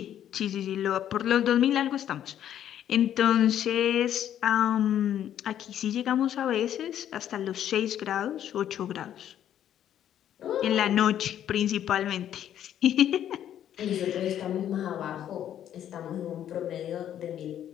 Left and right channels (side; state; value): right; quieter; 10.6 dB